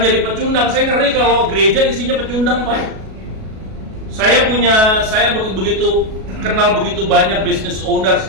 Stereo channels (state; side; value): late; left; 37 ms